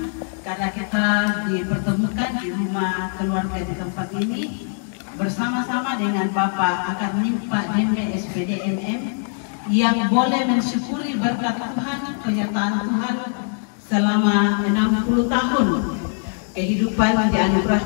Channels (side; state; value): right; silent; 57 dB below the other